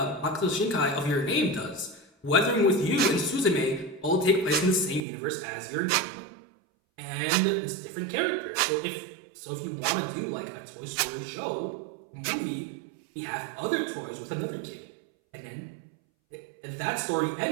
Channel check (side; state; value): left; drops out; at 5.0 s